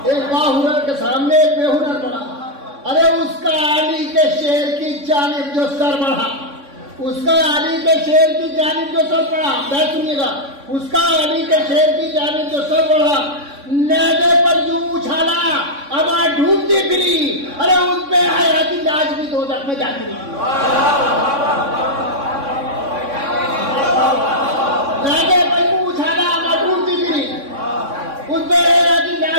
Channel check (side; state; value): left; late; 3.6 ms